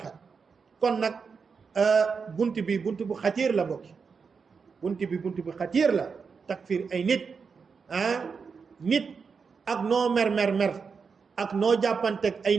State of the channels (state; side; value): quieter; left; 5.5 dB